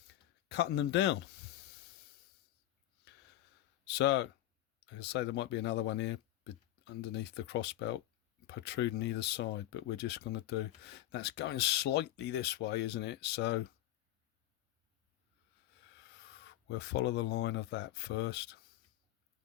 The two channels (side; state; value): right; quieter; 14.1 dB